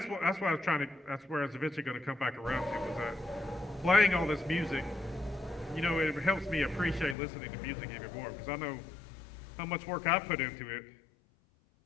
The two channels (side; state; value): right; drops out; at 7.2 s